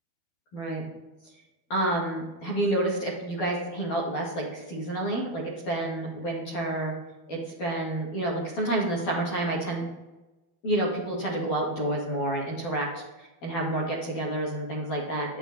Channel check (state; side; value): late; right; 12 ms